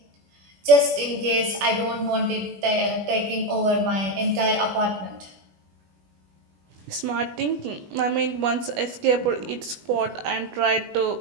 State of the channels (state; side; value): late; left; 21 ms